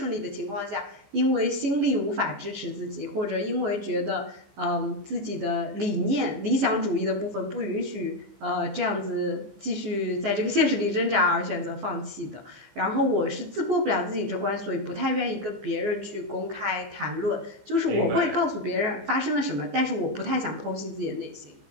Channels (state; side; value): late; left; 15 ms